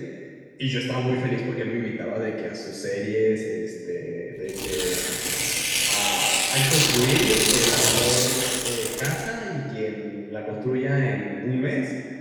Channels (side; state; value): both; identical; correlation 1.00